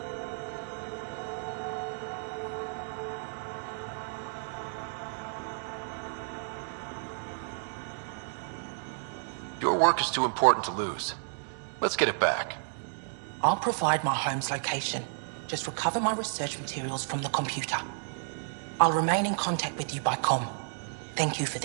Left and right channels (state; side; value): silent; left; digital silence